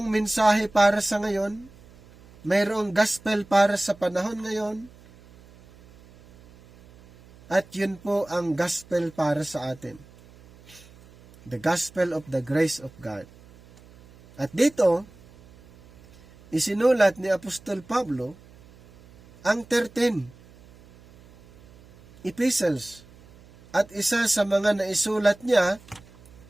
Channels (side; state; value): right; noise; hum, 24 dB below the sound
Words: mensahe para sa ngayon, mayroong gospel para sa panahon ngayon, at yun po ang gospel para sa atin. The gospel of the grace of God. At dito, isinulat ni Apostol Pablo ang 13 epistles. At isa sa mga naisulat niya